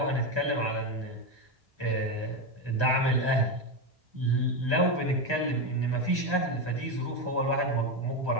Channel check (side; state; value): left; late; 1.2 ms